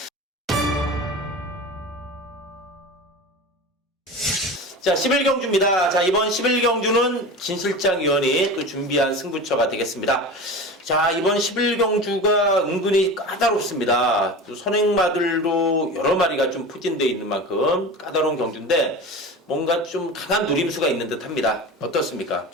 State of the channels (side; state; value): both; normal; correlation 0.31